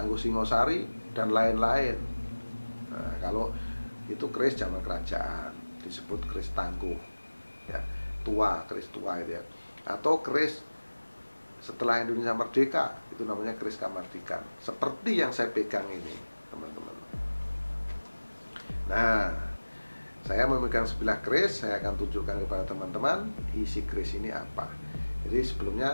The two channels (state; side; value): inverted; both; correlation -1.00